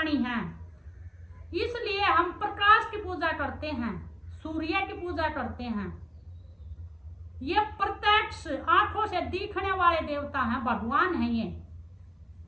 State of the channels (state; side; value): identical; both; correlation 1.00